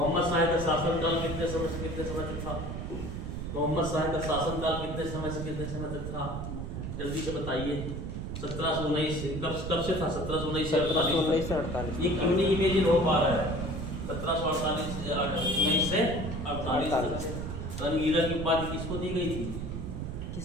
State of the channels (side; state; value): right; noise; rumble, 5 dB below the sound